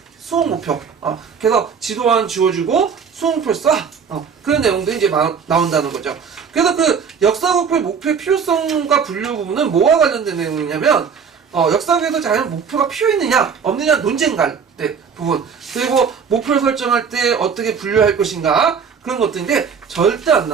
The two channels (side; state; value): left; quieter; 6.4 dB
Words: 수업 목표. 그래서 지도안 지워주고 수업 목표를 써. 그런 내용도 이제 나온다는 거죠. 그래서 그 역사교육의 목표의 필요성과 분류 부분은 뭐와 관련된 내용이냐면 역사교육에서 과연 목표가 필요했느냐 없느냐 논쟁갈 때 부분 그리고 목표를 설정할 때 어떻게 분류할 것인가 그런 것들인데 절대 안